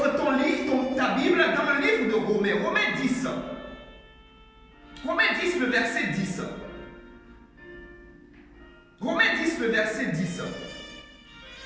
ta Bible dans le livre de Romains, Romains 10. Romains 10, le verset 10. Romains 10, le verset 10.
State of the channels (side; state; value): both; identical; correlation 1.00